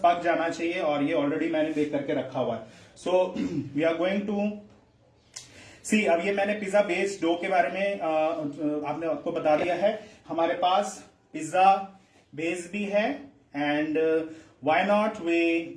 पक जाना चाहिए, और ये ऑलरेडी मैंने बेक करके रखा हुआ है। So we are going to see, अब ये मैंने पिज्जा बेस डो के बारे में आपने आपको बता दिया है। हमारे पास पिज्जा बेस भी है, and why not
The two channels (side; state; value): both; identical; correlation 1.00